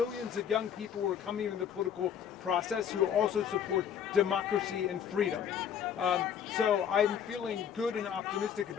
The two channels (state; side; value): quieter; right; 8.5 dB